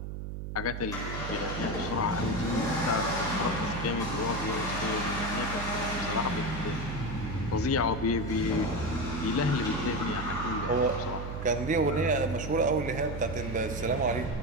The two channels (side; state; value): right; noise; hum, 6 dB below the sound